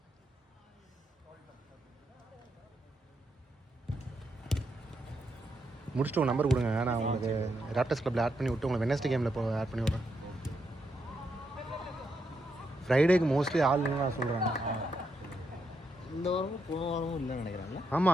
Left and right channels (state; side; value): normal; both; correlation 0.81